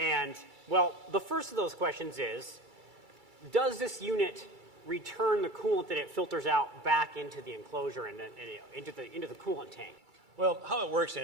well, the first of those questions is, does this unit return the coolant that it filters out back into the enclosure and into the coolant tank? Well, how it works,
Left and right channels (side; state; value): left; late; 2.3 ms